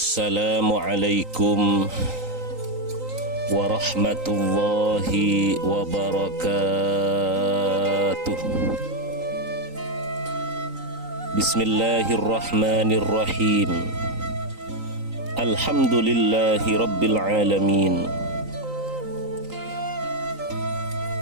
warahmatullahi wabarakatuh. Bismillahirrahmanirrahim. Alhamdulillahi rabbil alamin.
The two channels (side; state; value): left; late; 3.9 ms